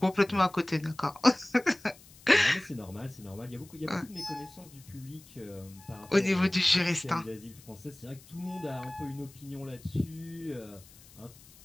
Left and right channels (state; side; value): noise; left; hiss, 23 dB below the sound